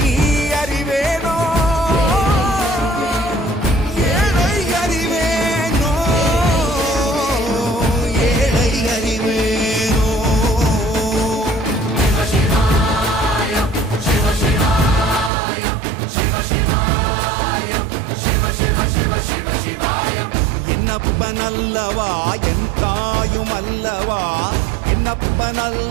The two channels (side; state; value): left; drops out; at 15.3 s